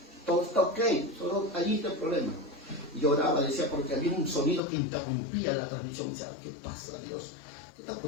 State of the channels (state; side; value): drops out; right; at 4.6 s